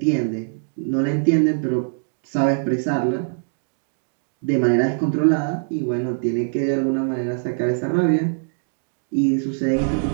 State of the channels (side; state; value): left; silent; digital silence